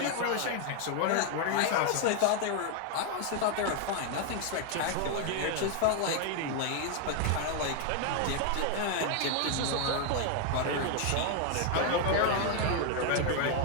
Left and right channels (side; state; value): both; different; correlation 0.00